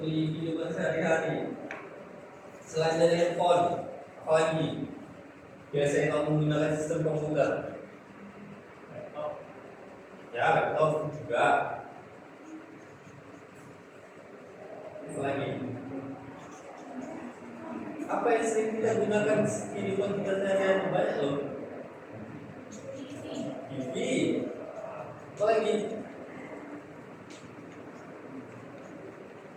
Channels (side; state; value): both; identical; correlation 1.00